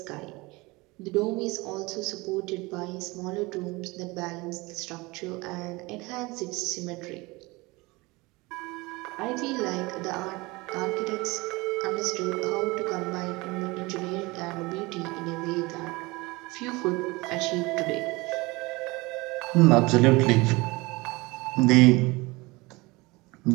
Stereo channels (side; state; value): left; quieter; 23.4 dB